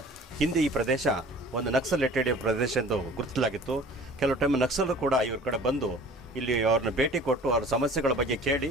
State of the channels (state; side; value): normal; both; correlation 0.46